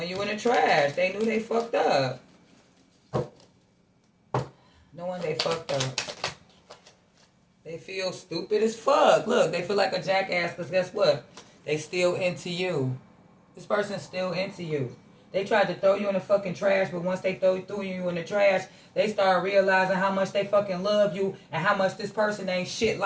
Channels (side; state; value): both; identical; correlation 1.00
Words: you in the trash. They knew they fucked up. Knowing they fucked up. They feel stupid as fuck. Look, they feel like a jackass because guess what? They still into you. This person's still into you. They tried to throw you in the fucking trash, but once they threw you in the trash, they started realizing how much they fucking love you and how much this person ain't shit